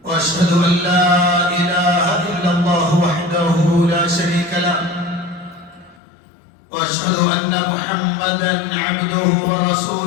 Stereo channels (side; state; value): right; drops out; at 6.0 s